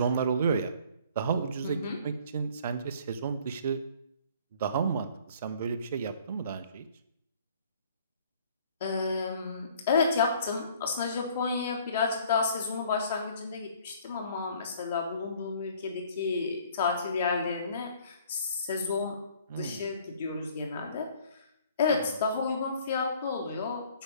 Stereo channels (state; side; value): inverted; both; correlation -0.55